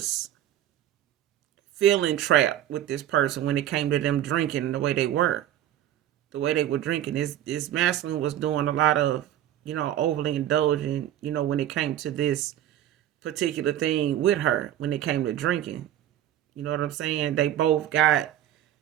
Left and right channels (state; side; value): quieter; left; 11.9 dB